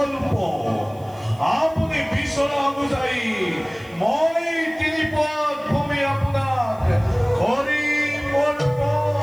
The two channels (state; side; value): noise; right; hiss, 27 dB below the sound